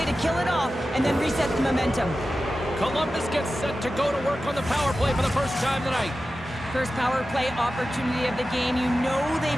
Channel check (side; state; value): both; normal; correlation 0.93